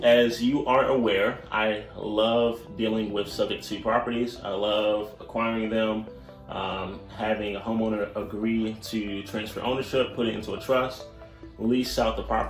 as you are aware, I love dealing with subject to properties. I love acquiring them, having a homeowner agree to transfer ownership, put it into a trust, lease out the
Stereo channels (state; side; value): identical; both; correlation 1.00